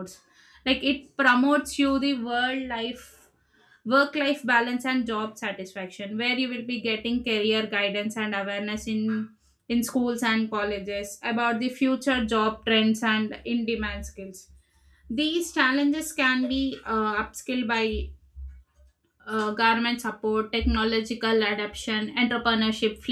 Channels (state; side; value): identical; both; correlation 1.00